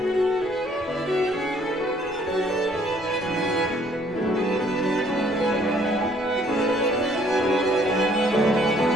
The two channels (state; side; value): normal; both; correlation 0.62